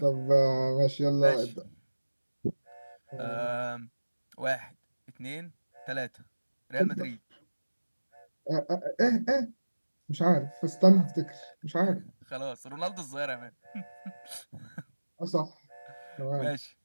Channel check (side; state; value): both; inverted; correlation -1.00